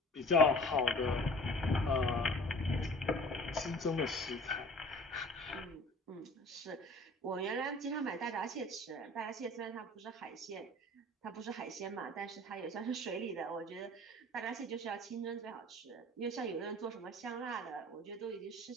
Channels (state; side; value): normal; both; correlation 0.46